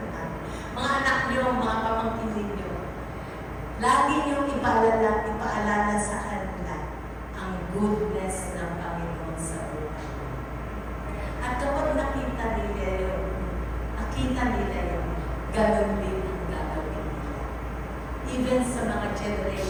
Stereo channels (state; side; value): identical; both; correlation 1.00